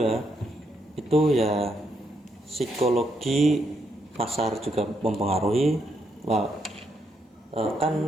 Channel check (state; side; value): normal; both; correlation 0.77